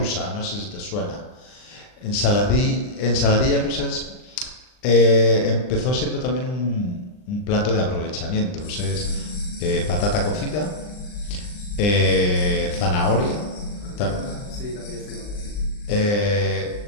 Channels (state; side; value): late; right; 39 ms